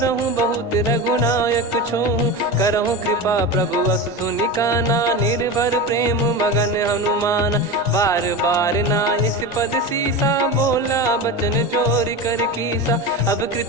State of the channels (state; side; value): normal; both; correlation 0.24